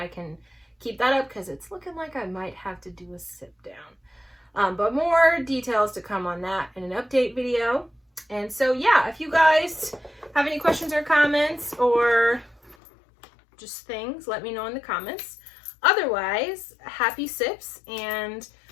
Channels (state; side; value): drops out; right; at 12.8 s